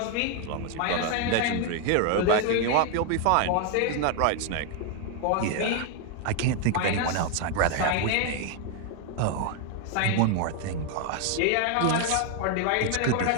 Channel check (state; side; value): different; both; correlation 0.01